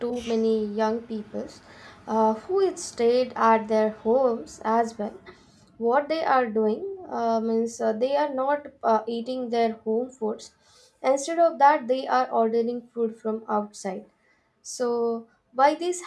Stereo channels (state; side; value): identical; both; correlation 1.00